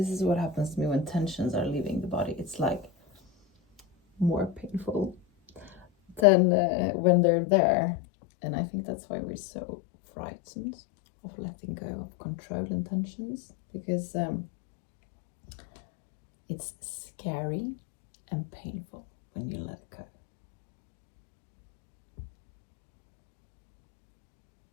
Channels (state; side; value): drops out; right; at 6.2 s